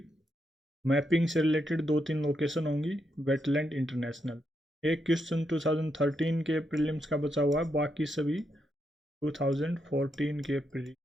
mapping से रिलेटेड दो तीन लोकेशन होंगी। Wetland international. एक क्वेश्चन 2013 के प्रीलिम्स का बचा हुआ है, बाकी सभी 2014 के प्री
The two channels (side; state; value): both; normal; correlation 0.81